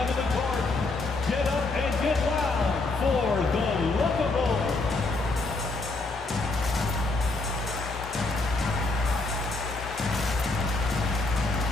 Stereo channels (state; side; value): quieter; right; 3.3 dB